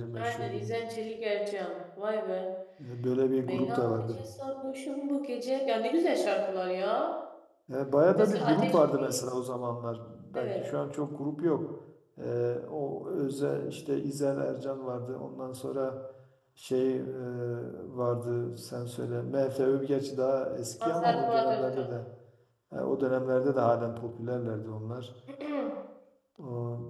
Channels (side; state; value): both; identical; correlation 1.00